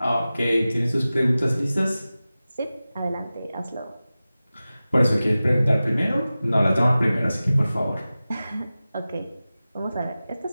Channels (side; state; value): both; inverted; correlation -0.96